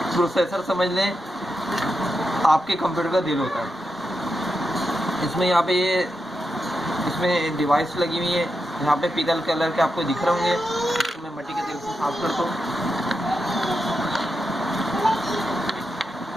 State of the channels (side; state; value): both; normal; correlation 0.87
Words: प्रोसेसर समझ लें आपके कंप्यूटर का दिल होता है। इसमें यहाँ पे इसमें डिवाइस लगी हुई है, यहाँ पे पीतल कलर के आपको दिख रहे होंगे। तो मैं मिट्टी के तेल से साफ करता हूँ।